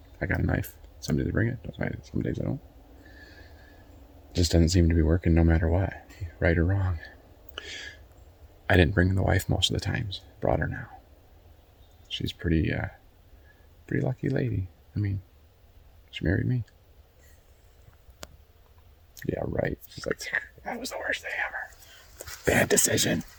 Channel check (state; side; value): identical; both; correlation 1.00